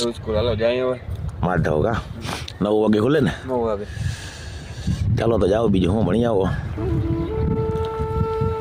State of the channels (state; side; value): identical; both; correlation 1.00